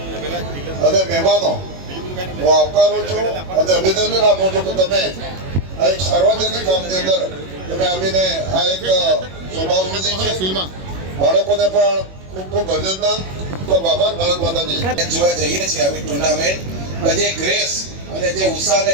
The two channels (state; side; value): late; left; 21 ms